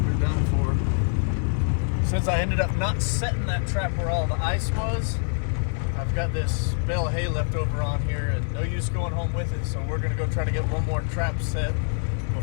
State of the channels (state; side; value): silent; right; 60 dB below the other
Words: They're done for. Since I ended up not setting that trap where all the ice was, I've got this bale of hay left over on here and no use going home with it, so we're gonna go try to get one more trap set